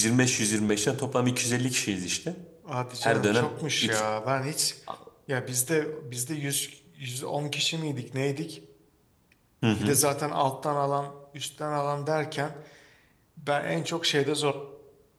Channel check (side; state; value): both; identical; correlation 1.00